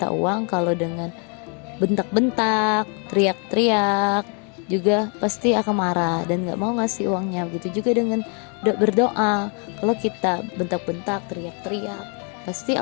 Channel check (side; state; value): right; quieter; 37.7 dB